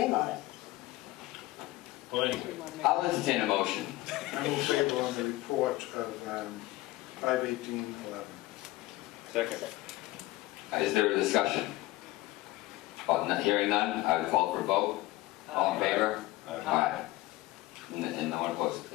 on it. Well, anyway. I'll entertain a motion. I will favor on the report of 51811. Second. Is there a discussion? Hearing none, I would call for a vote. All in favor? Aye. And no one opposed.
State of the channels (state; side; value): quieter; right; 18.3 dB